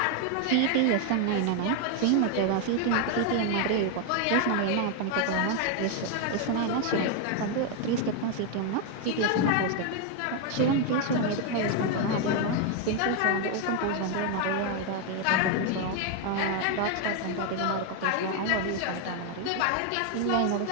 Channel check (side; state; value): both; different; correlation 0.01